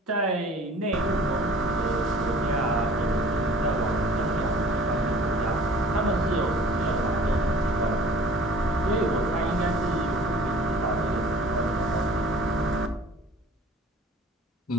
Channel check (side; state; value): both; normal; correlation 0.48